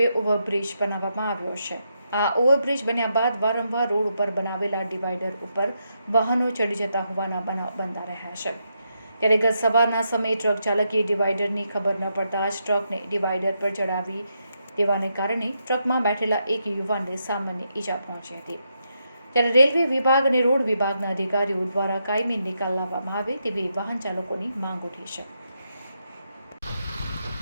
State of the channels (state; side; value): inverted; both; correlation -0.82